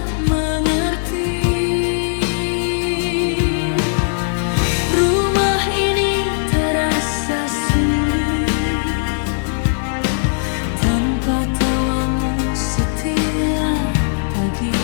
mengerti. Rumah ini terasa sunyi tanpa tawamu setiap pagi.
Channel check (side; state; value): right; silent; digital silence